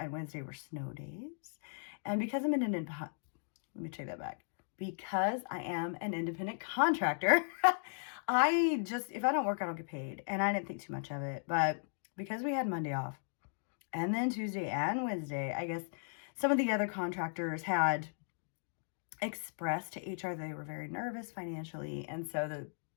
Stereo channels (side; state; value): right; silent; digital silence